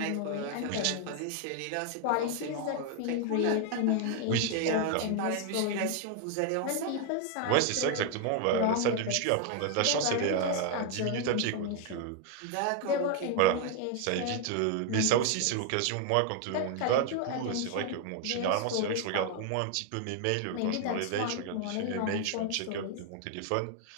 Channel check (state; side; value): different; both; correlation 0.00